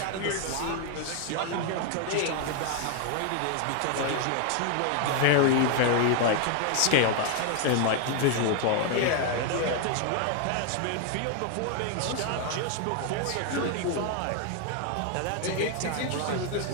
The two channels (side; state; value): both; different; correlation 0.01